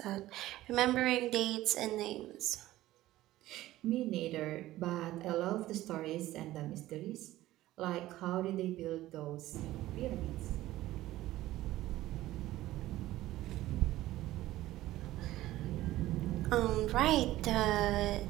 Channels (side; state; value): left; quieter; 15.7 dB